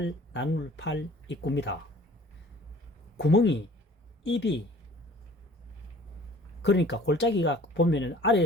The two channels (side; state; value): both; normal; correlation 0.50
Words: 입구입니다. 구멍이 입이 그러니까 골짜기가 보면은